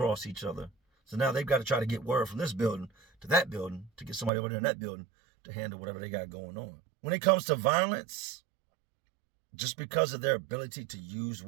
each other. So now they've got to try to get word from this building to that building to get somebody over there in that building to handle whatever they got going on. When it comes to violence, just because of their ability to use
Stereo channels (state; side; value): drops out; left; at 4.3 s